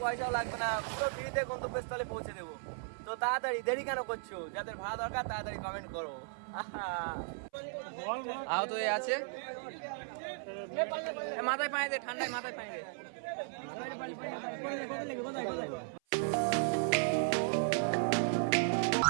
পয়সাও লাগবে না, পুরো ফ্রিতে গন্তব্যস্থলে পৌঁছে দেবো। তো তাড়াতাড়ি, দেরি কেন করছো? যাদের ভাড়া দরকার তাড়াতাড়ি কমেন্ট করো। আহত হয়ে আছে, মাথায় পায়ে দে, ঠান্ডায় মাথায় পায়ে দে।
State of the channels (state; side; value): silent; left; 54 dB below the other